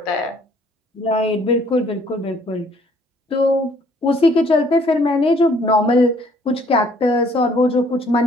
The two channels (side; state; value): both; normal; correlation 0.61